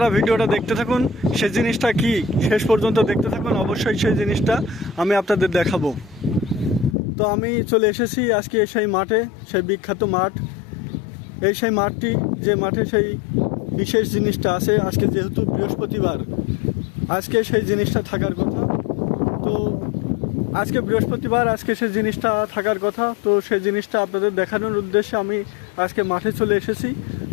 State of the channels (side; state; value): right; drops out; at 7.0 s